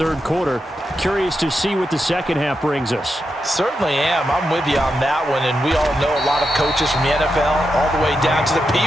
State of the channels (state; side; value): normal; both; correlation 0.86